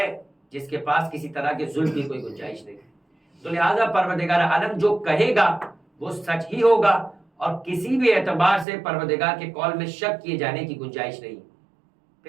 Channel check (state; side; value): drops out; left; at 8.7 s